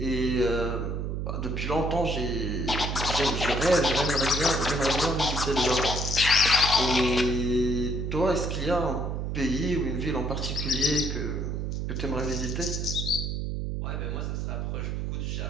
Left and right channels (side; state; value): right; noise; hum, 2 dB below the sound